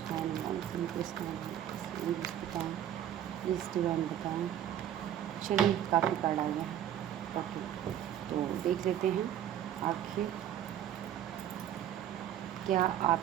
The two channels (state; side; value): quieter; left; 10.7 dB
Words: बताएं, प्लीज़ डिवाइन बताएं। चलिए काफ़ी कार्ड आ गया। ओके, तो देख लेते हैं आखिर क्या